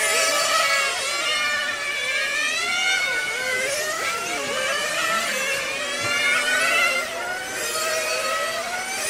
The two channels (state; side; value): identical; both; correlation 1.00